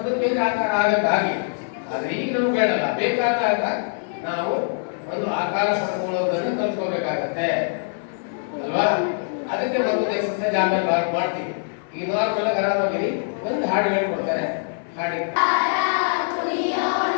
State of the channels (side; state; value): right; silent; 63 dB below the other